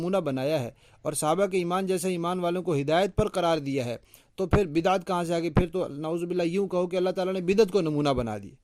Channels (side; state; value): both; identical; correlation 1.00